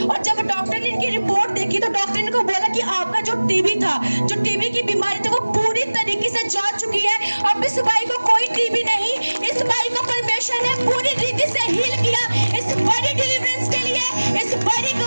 जब डॉक्टर ने इनकी रिपोर्ट देखी तो डॉक्टर ने इनको बोला कि आपका जो टीबी था, जो टीबी की बीमारी थी वो पूरी तरीके से जा चुकी है। अब इस भाई को कोई टीबी नहीं, इस भाई को परमेश्वर ने पूरी रीति से हील किया। इस बड़ी डिलीवरेंस के लिए, इस बड़ी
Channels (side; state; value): both; inverted; correlation -1.00